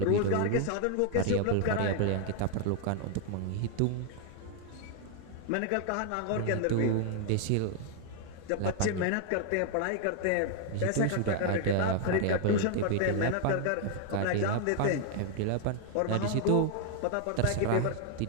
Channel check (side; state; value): both; different; correlation 0.00